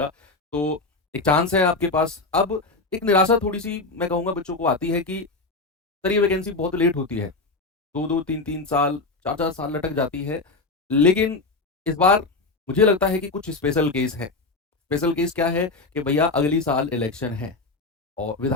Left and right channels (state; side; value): quieter; right; 3.5 dB